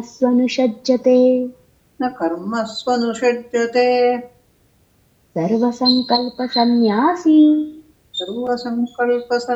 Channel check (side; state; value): both; identical; correlation 1.00